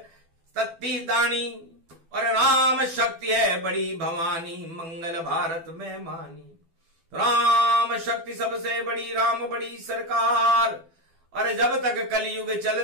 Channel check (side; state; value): left; late; 12 ms